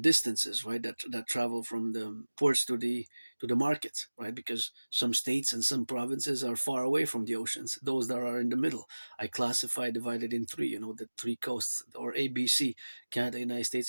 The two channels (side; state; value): both; inverted; correlation -1.00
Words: right, that travel from the ports to the markets, right? Because some states and some provinces are far away from the oceans. Those that are in the middle, I classify, divided in three, the three coasts, or ABC: Canada, United